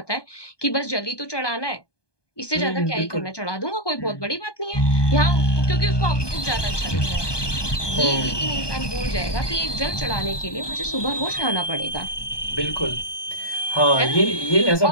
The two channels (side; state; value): right; late; 1.2 ms